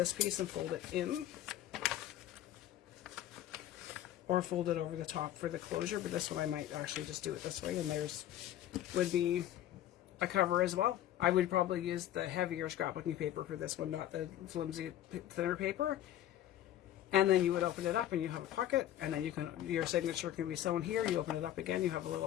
piece and fold it in, or fold it over the top for the closure, but this one I might actually just do it this way, and there's would be a cover as well. I would probably use the heavier scrapbooking paper for this one, not the flimsy, thinner paper. And then you would open it up and you have a pocket, and then your signature can be sewn here. You open it up again, you have a little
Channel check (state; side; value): quieter; right; 12.4 dB